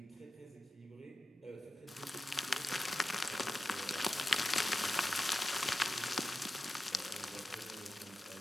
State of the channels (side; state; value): both; normal; correlation 0.92